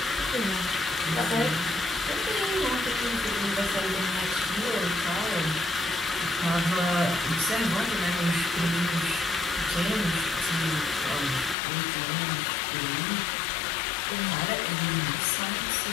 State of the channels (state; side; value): drops out; right; at 11.6 s